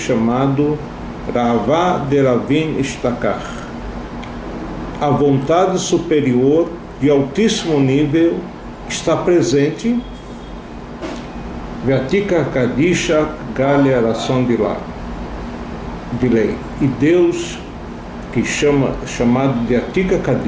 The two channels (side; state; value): both; identical; correlation 1.00